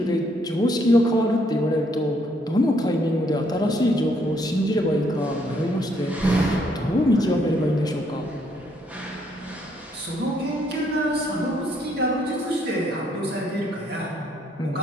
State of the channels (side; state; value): both; normal; correlation 0.70